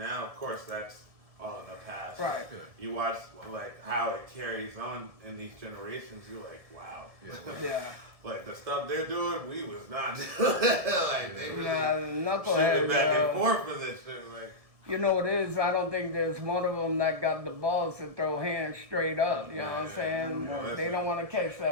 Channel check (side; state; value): left; late; 1.7 ms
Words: of course that's all in the past. Right. You watch like how it carries on in these generations, you're like, wow. Yeah. Like the stuff they're doing, we was not doing. Like they really shooting back and forth for this shit. Like, you know what it is? I don't think there's one of them that got the balls to throw hands straight up. You know what I'm saying? They don't want to catch